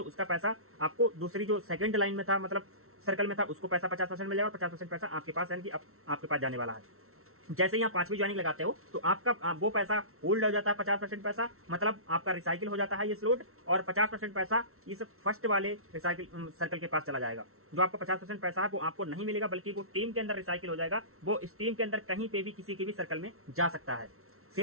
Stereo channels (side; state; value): left; late; 0.63 ms